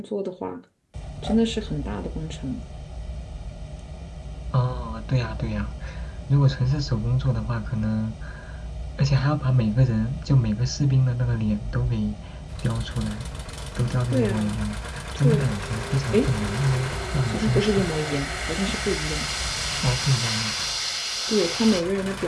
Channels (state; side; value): identical; both; correlation 1.00